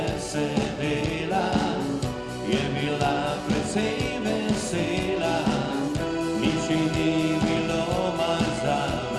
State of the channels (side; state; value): both; identical; correlation 1.00